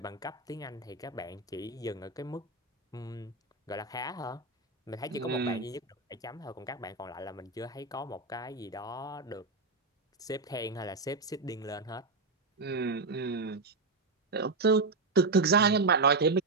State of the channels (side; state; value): left; quieter; 3.6 dB